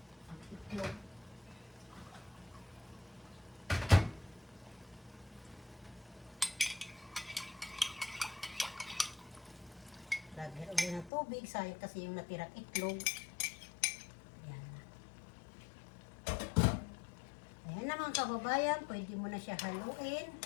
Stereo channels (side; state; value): right; drops out; at 11.1 s